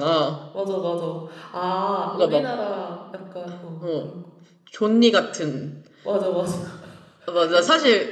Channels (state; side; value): identical; both; correlation 1.00